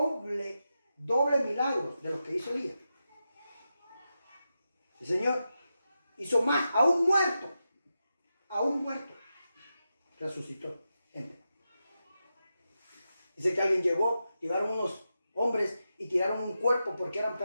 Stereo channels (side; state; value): both; inverted; correlation -0.89